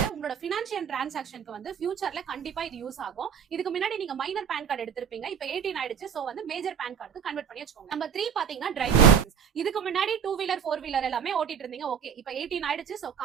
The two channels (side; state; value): left; quieter; 7.6 dB